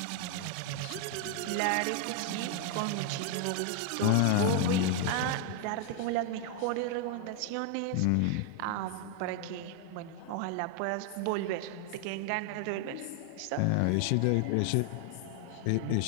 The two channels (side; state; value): both; different; correlation 0.00